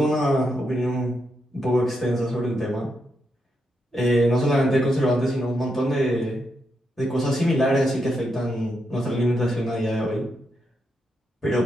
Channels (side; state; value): both; normal; correlation 0.82